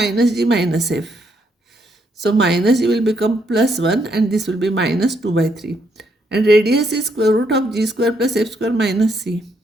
g minus f. So minus g will become plus 1, and this will be minus 2 by 3. And radius is square root of g square plus f square minus c.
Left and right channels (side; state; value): both; normal; correlation 0.75